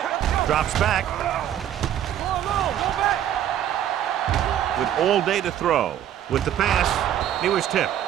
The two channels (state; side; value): quieter; left; 10.9 dB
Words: Drops back. With all day to throw. With the pass, he was tipped.